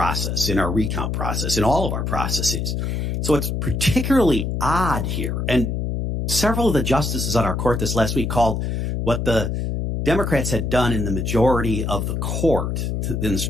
in our recount process, in all of our processes. So it's particularly odd here. And several of the justices on our court this last week called what the Democrats had done in the majority of the court, in the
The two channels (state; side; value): noise; left; hum, 1 dB below the sound